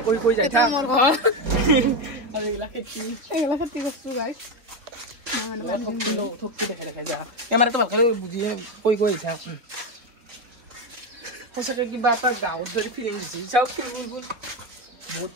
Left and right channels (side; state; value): left; late; 3.8 ms